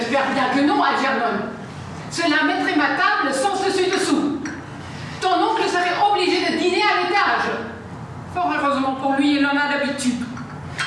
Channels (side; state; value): both; identical; correlation 1.00